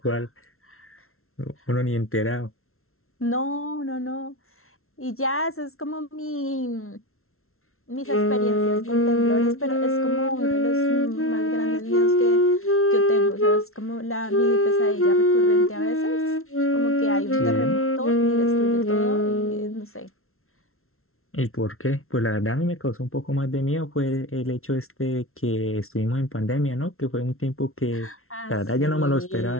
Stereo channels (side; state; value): right; late; 0.62 ms